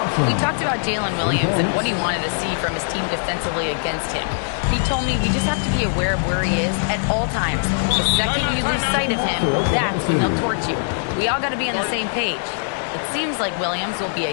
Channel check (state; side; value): silent; right; digital silence